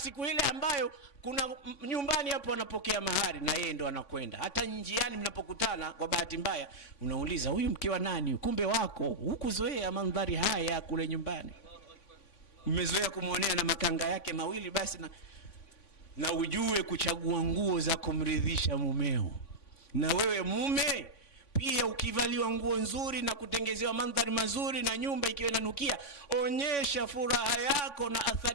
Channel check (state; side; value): late; right; 3.5 ms